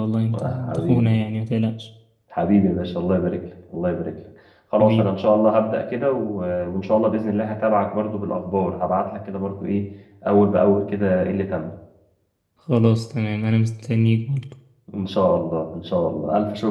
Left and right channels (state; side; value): identical; both; correlation 1.00